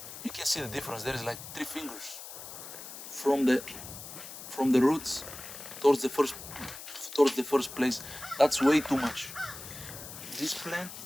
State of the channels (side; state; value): left; noise; hiss, 12 dB below the sound